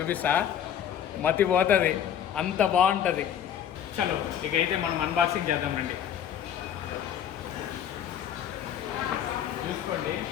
మతిపోతుంది, అంత బాగుంటుంది. చలో ఇకైతే మనం అన్బాక్సింగ్ చేద్దాం రండి. చూసుకోండి,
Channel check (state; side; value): quieter; right; 9.5 dB